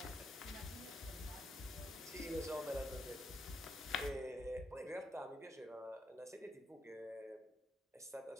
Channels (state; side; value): normal; both; correlation 0.79